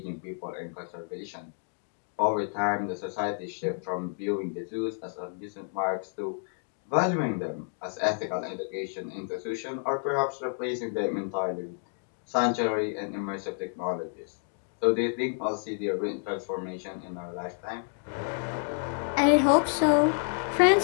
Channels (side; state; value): right; silent; 58 dB below the other